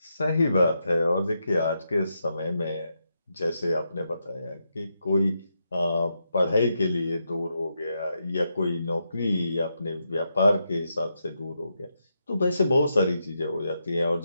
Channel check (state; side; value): inverted; both; correlation -0.83